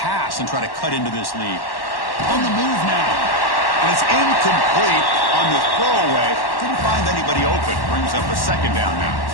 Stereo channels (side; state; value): right; late; 1.1 ms